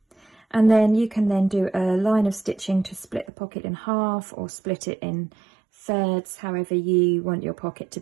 And then you can then do a line of stitching to split the pocket in half or split it in thirds, however you want your pocket to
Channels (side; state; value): left; drops out; at 3.3 s